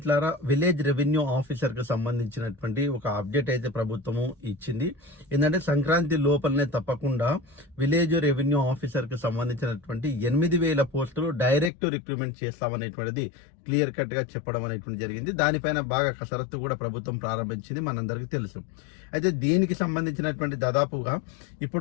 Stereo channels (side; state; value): right; drops out; at 11.7 s